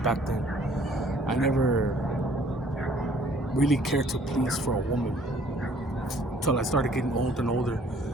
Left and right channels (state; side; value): normal; both; correlation 0.58